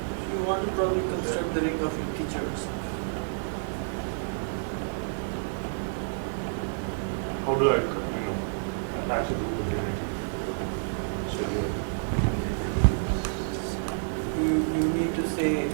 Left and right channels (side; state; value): left; silent; digital silence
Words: You want to probably construct the ring of integers. How do I, attach it to the unity? So you need to say